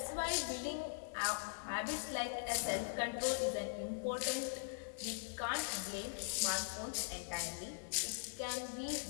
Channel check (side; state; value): right; silent; 50 dB below the other